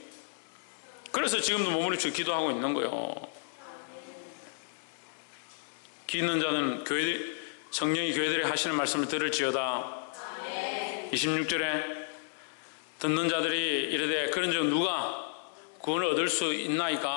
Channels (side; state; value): right; silent; digital silence